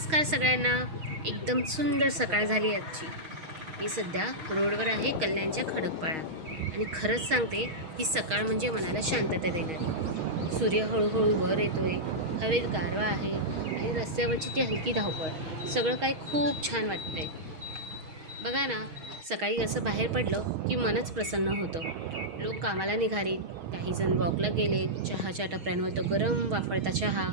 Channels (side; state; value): left; late; 6.3 ms